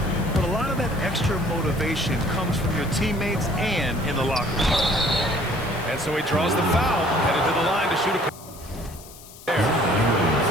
But a lot of that extra motivation comes from your teammates and in the locker room. And so he draws the foul, headed to the line to shoot a there.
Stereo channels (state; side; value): noise; left; hiss, 19 dB below the sound